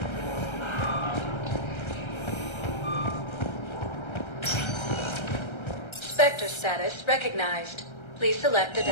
Spectre status recognized. Please select a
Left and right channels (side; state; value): right; late; 1.3 ms